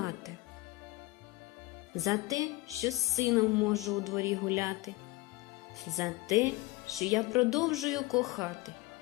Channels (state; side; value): quieter; right; 21.3 dB